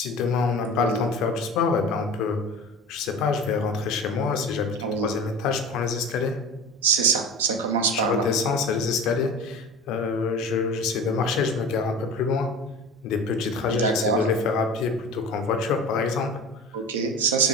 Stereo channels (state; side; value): normal; both; correlation 0.34